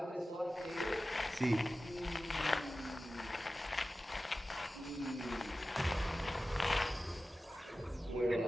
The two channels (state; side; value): normal; both; correlation 0.95